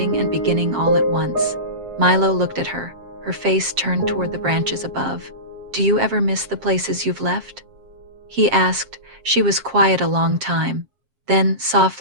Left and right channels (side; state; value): left; late; 7.5 ms